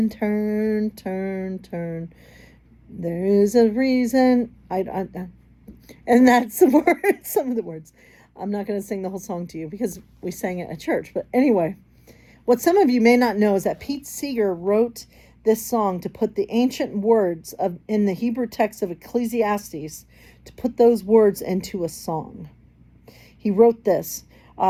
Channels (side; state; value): both; identical; correlation 1.00